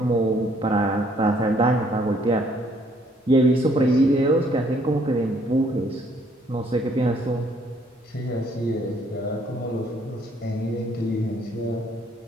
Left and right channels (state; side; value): normal; both; correlation 0.65